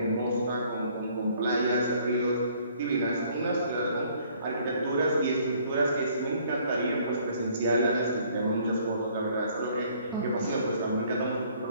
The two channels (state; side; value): inverted; both; correlation -0.60